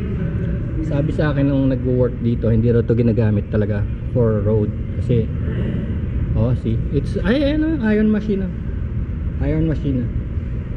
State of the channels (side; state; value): both; identical; correlation 1.00